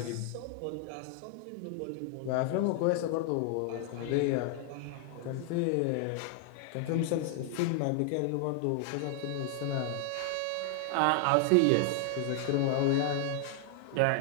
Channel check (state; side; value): different; both; correlation 0.00